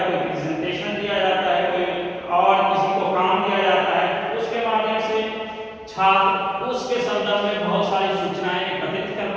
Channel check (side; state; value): both; identical; correlation 1.00